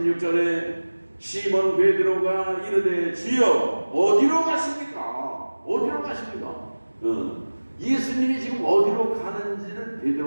시몬 베드로가 이르되 주여 어디로 가십니까? 어디로 가십니까? 예수님이 지금 어디로 가는지를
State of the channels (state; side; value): inverted; both; correlation -1.00